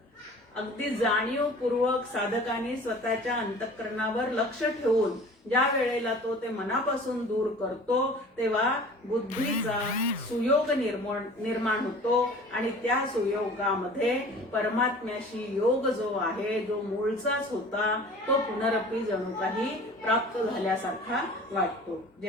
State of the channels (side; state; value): both; normal; correlation 0.44